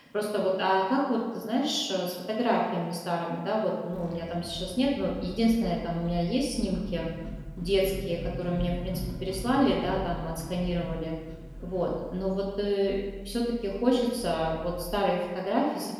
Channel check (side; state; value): both; identical; correlation 1.00